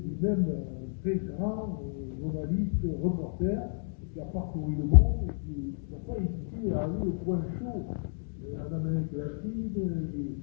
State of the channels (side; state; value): right; silent; 57 dB below the other